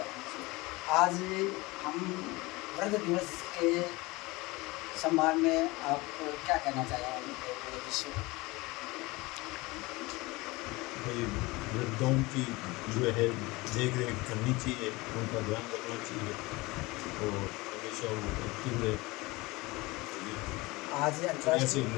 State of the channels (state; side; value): quieter; right; 22.5 dB